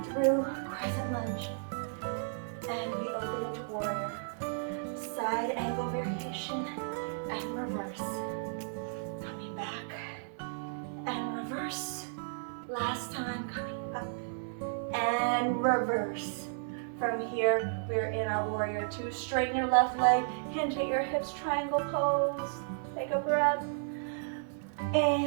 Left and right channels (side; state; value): left; silent; 55 dB below the other